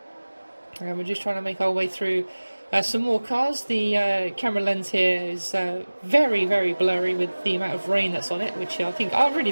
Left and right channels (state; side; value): inverted; both; correlation -1.00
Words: and we're just trying to make our way through some more cars. The camera lens here is very blurry with the amount of rain that's on it, which I